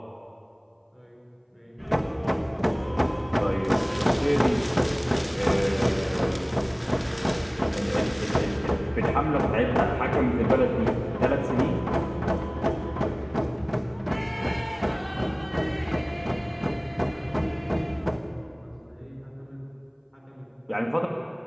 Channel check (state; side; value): identical; both; correlation 1.00